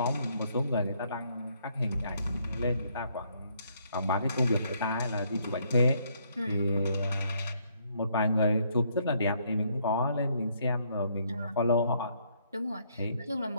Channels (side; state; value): both; inverted; correlation -0.70